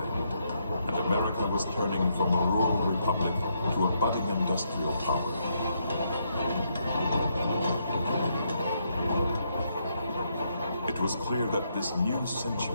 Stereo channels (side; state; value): both; inverted; correlation -0.76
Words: and America was turning from a rural republic to a budding industrial power. It was clear that this new